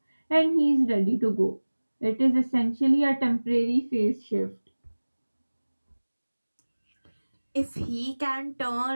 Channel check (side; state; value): both; inverted; correlation -1.00